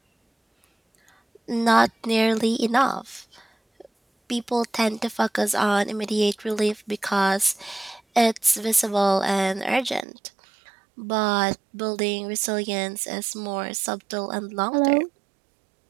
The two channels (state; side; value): drops out; left; at 10.1 s